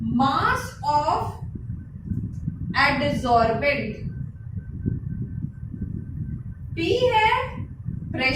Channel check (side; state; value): both; identical; correlation 1.00